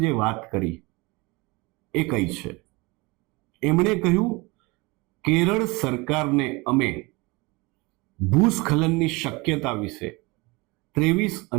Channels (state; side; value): quieter; left; 25.0 dB